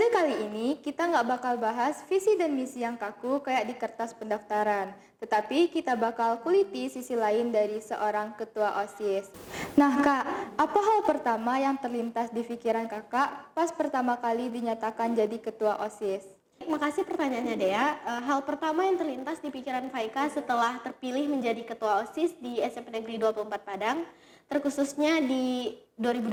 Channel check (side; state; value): both; identical; correlation 1.00